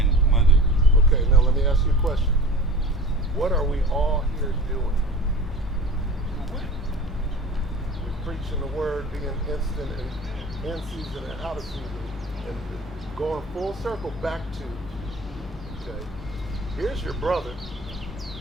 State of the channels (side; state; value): both; normal; correlation 0.38